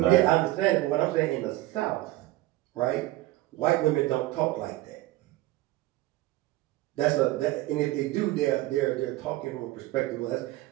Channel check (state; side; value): quieter; left; 17.8 dB